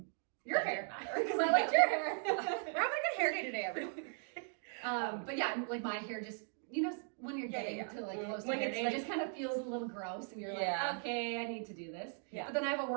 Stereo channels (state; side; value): silent; left; 52 dB below the other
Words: Your hair, because I liked your hair. We're having a good hair day today, everyone. But yeah, like my hair just, when you're getting to like close to when hair it's day, like, it just kind of feels a little gross, and you're like, okay, I need to do this. Yeah. But then I have a